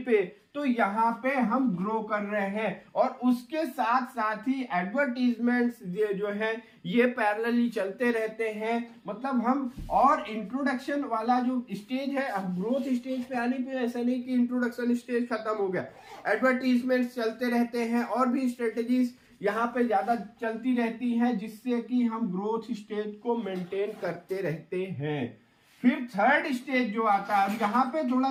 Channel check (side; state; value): both; identical; correlation 1.00